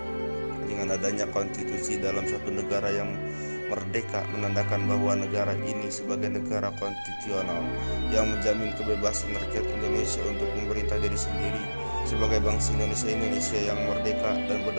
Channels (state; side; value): inverted; both; correlation -1.00